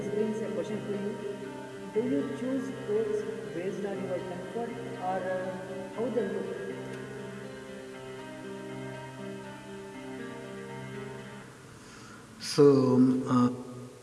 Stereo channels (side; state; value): both; identical; correlation 1.00